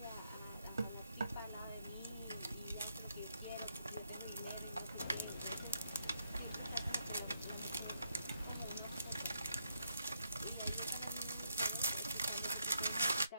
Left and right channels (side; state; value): both; inverted; correlation -0.78